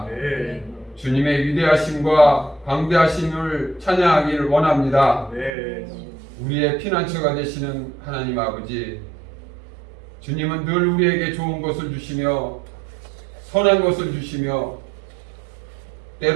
주님의 위대하심과 광대하심을 찬양하기를 원합니다. 우리의 피난처가 되시는 하나님 아버지, 주님은 늘 우리에게 좋은 것을 주시며 선한 것을 주시며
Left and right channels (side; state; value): left; drops out; at 5.5 s